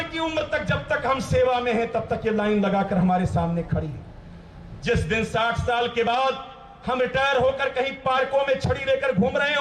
की उम्र तक, जब तक हम सेवा में हैं तब तक ये लाइन लगाकर हमारे सामने खड़ी है। जिस दिन 60 साल के बाद हम रिटायर होकर कहीं पार्कों में छड़ी लेकर घूम रहे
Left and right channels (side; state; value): both; identical; correlation 1.00